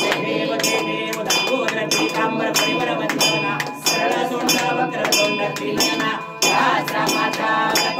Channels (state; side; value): identical; both; correlation 1.00